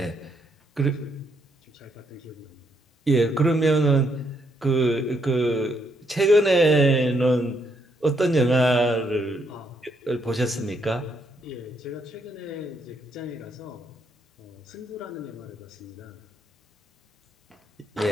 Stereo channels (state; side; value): normal; both; correlation 0.75